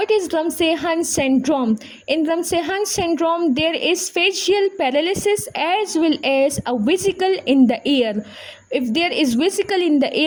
is Ramsay-Hunt syndrome? In Ramsay-Hunt syndrome, there is facial paralysis as well as a vesicle in the ear. If there is vesicle in the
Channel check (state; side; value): identical; both; correlation 1.00